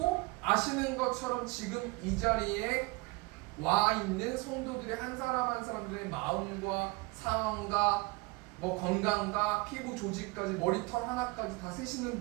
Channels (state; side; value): quieter; left; 25.4 dB